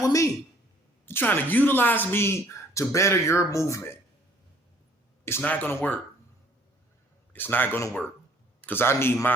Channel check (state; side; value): normal; both; correlation 0.59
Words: with me. They're trying to utilize me to better your movement. It's not going to work. It's not going to work. Because I need